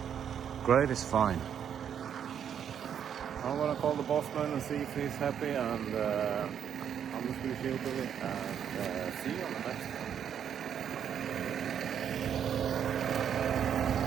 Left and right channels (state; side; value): quieter; left; 8.6 dB